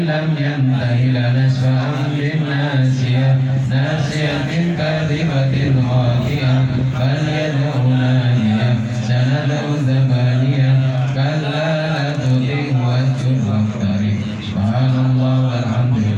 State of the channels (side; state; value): both; identical; correlation 1.00